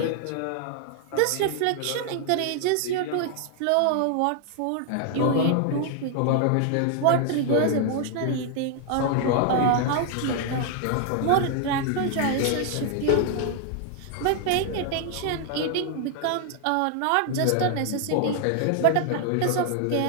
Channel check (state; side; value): different; both; correlation 0.00